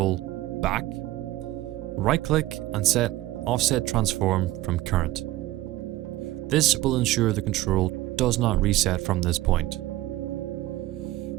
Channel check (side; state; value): left; quieter; 16.3 dB